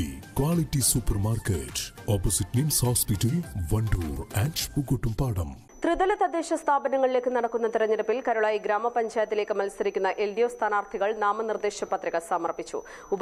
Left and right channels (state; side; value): identical; both; correlation 1.00